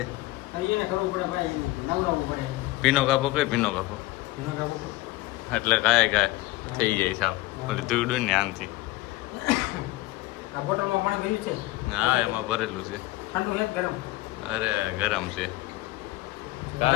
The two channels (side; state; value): right; quieter; 19.0 dB